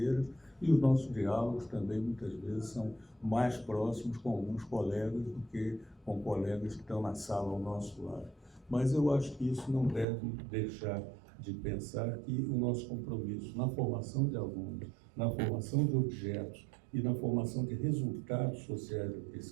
e os nossos diálogos também, muitas vezes, são mais próximos com alguns colegas do que com colegas que estão na sala ao nosso lado. Mas eu acho que isso não deve deixar de pensar que o nosso compromisso na formação de alunos, na formação de objetos e na formação de resultados sociais da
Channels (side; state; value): left; drops out; at 10.1 s